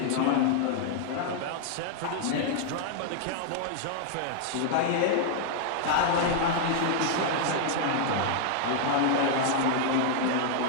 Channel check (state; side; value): different; both; correlation -0.01